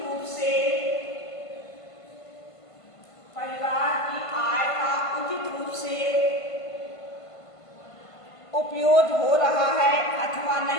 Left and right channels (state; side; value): late; right; 1.5 ms